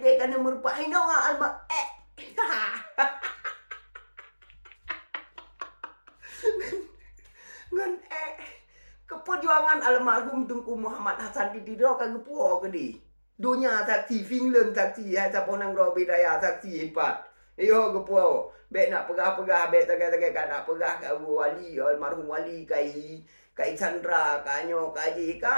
kan merupa hino alma ngan keperjuangan almarhum Tunku Muhammad Hasan Ditiro kagepuo gedi dunia saksi Finland saksi ya saponang robi daya saksi hebat. Iyo kepuau, bek nak pegah-pegah, bek tegak-tegak kan nak pegah kat wali, almarhum wali kai Sandra, kanyo kaji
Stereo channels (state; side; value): inverted; both; correlation -1.00